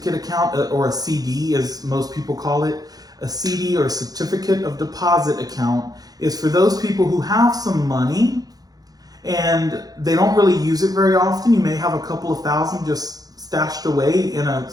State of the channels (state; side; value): late; left; 0.18 ms